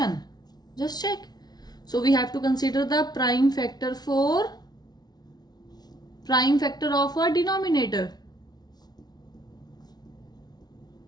Just check. So we have to consider the prime factor of a denominator.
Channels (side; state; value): right; late; 0.19 ms